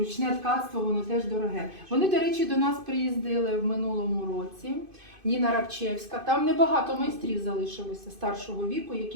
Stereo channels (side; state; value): left; late; 2.5 ms